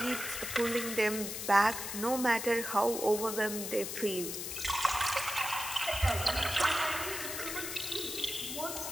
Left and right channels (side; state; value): left; noise; hiss, 5 dB below the sound